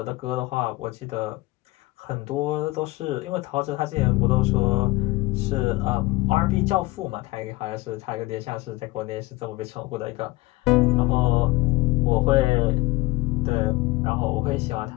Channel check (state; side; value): quieter; right; 21.2 dB